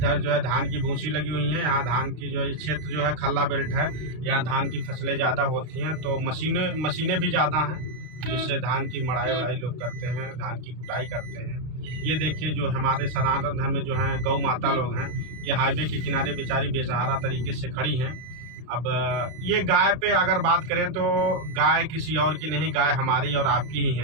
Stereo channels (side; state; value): left; late; 32 ms